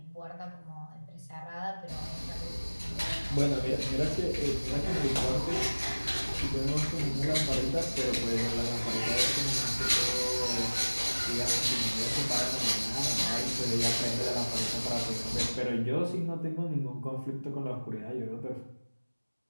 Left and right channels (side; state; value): both; inverted; correlation -1.00